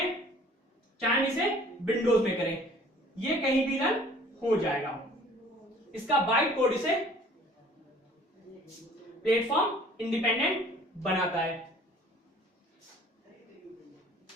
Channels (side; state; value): both; normal; correlation 0.52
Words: चाहे हम इसे विंडोज में करें, ये कहीं भी रन हो जाएगा। इसका बाइट कोड इसे प्लेटफॉर्म इंडिपेंडेंट बनाता है।